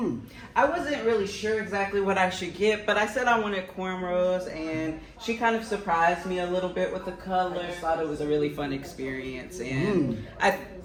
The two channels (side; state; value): both; identical; correlation 1.00